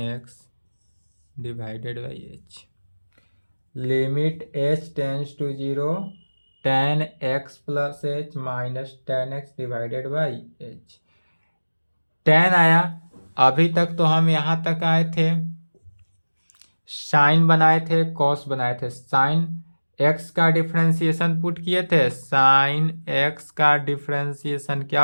x divided by h। Limit h tends to 0 tan x plus h minus tan x divided by h। tan आया, अभी तक तो हम यहाँ तक आए थे, sign बनाए थे, कॉस बनाए थे। साइन x का डिफरेंशिएशन पुट किए थे, साइन x का डिफरेंशिएशन क्या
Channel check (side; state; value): both; inverted; correlation -1.00